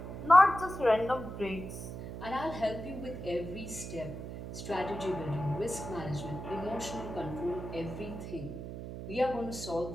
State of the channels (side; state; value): right; noise; hum, 8 dB below the sound